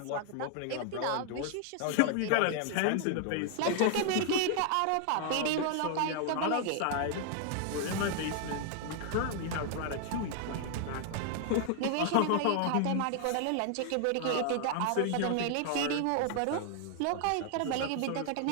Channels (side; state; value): both; different; correlation 0.00